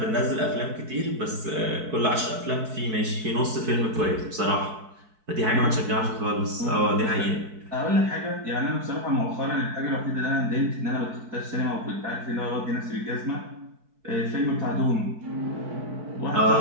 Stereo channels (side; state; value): left; late; 4.6 ms